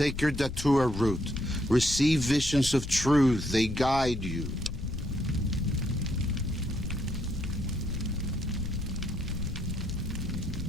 datura root, receive visions of truth, they guide you.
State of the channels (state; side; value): noise; left; rumble, 8 dB below the sound